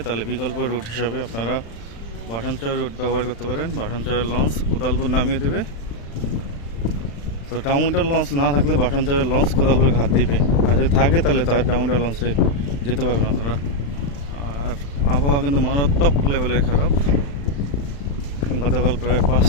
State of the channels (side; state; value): right; late; 35 ms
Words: তাহলে বিকল্প রুট হিসাবে আপনারা ভাসানচর রুট ব্যবহার করতে পারেন। ভাসানচরের লঞ্চ কোদালপুর নামিয়ে দেবে। তো ডাউনটাউন লঞ্চ না থাকলে ভাসানচরের লঞ্চ কোদালপুর ঘাট দিবে, আর যদি থাকে তাহলে তার ডাউনটাউন লঞ্চে যেতে পারবেন আপনারা। আর আবহাওয়া কিন্তু মারাত্মক লেভেলের খারাপ। গতকাল প্রায়